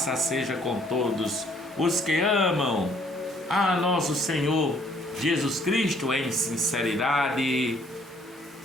seja com todos os que amam a nosso Senhor Jesus Cristo em sinceridade.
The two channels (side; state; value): both; normal; correlation 0.63